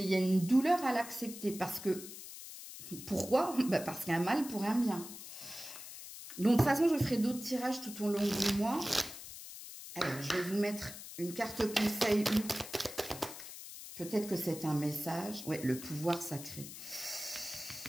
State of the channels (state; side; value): noise; left; hiss, 12 dB below the sound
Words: il y a une douleur à l'accepter. Parce que, pourquoi? Parce qu'un mal pour un bien. Donc, de toute façon, je ferai d'autres tirages tout au long du mois. Alors, je vais vous mettre une carte conseil. Peut-être que c'est un message. Ouais, le pouvoir sacré.